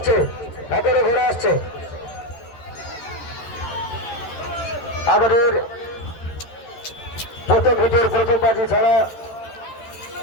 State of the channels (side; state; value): right; late; 13 ms